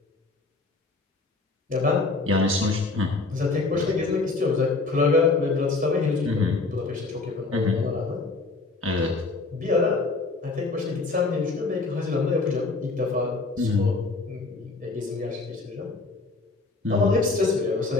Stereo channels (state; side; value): quieter; right; 3.6 dB